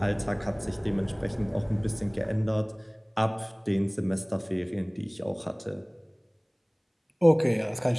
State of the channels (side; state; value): both; identical; correlation 1.00